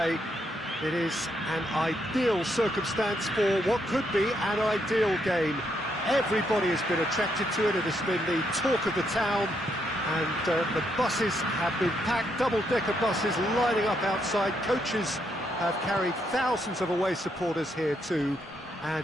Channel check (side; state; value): both; normal; correlation 0.77